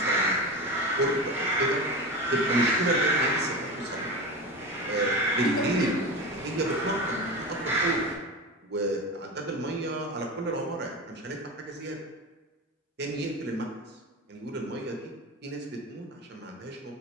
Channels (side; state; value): both; normal; correlation 0.25